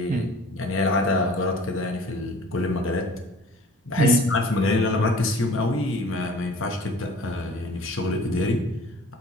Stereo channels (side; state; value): both; normal; correlation 0.47